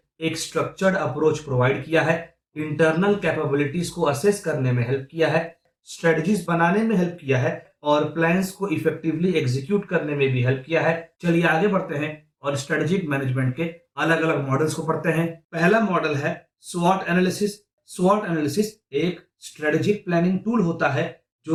एक स्ट्रक्चर्ड अप्रोच प्रोवाइड किया है, इंटरनल कैपेबिलिटीज को असेस करने में हेल्प किया है, स्ट्रेटजीज बनाने में हेल्प किया है और प्लान्स को इफेक्टिवली एग्जीक्यूट करने में भी हेल्प किया है। चलिए आगे बढ़ते हैं और स्ट्रेटेजिक मैनेजमेंट के अलग अलग मॉडल्स को पढ़ते हैं। पहला मॉडल है स्वॉट एनालिसिस। स्वॉट एनालिसिस एक स्ट्रेटेजिक प्लानिंग टूल होता है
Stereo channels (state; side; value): identical; both; correlation 1.00